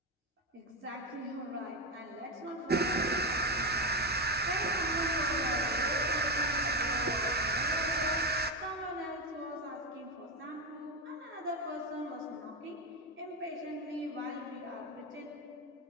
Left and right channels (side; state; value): both; normal; correlation 0.12